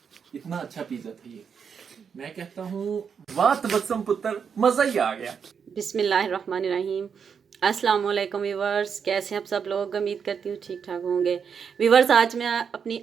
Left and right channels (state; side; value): quieter; left; 6.7 dB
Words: इतना अच्छा पिज्जा था ये। मैं कहता हूँ वाह तबस्सुम पुत्र, मजा ही आ गया। बिस्मिल्लाहिर्रहमानिर्रहीम। अस्सलाम वालेकुम व्यूवर्स, कैसे हैं आप सब लोग? उम्मीद करती हूँ ठीक ठाक होंगे। व्यूवर्स आज मैं अपनी